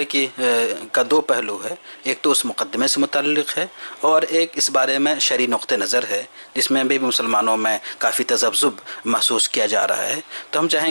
کا دو پہلو ہے، ایک تو اس مقدمے سے متعلق ہے اور ایک اس بارے میں شرعی نقطہ نظر ہے جس میں بھی مسلمانوں میں کافی تذبذب محسوس کیا جا رہا ہے. تو ہم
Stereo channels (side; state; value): both; inverted; correlation -1.00